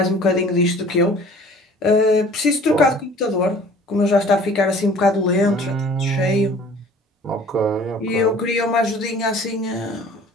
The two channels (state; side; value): normal; both; correlation 0.49